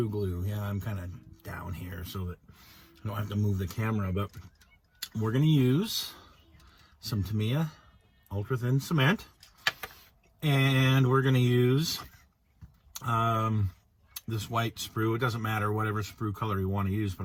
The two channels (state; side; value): identical; both; correlation 1.00